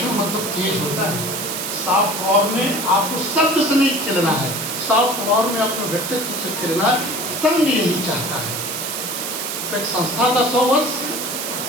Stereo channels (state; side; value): noise; right; hiss, 4 dB below the sound